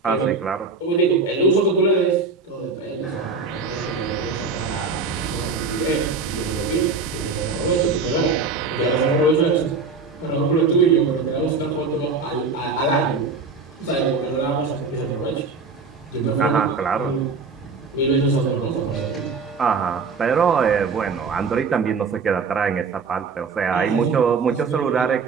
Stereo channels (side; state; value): left; quieter; 4.5 dB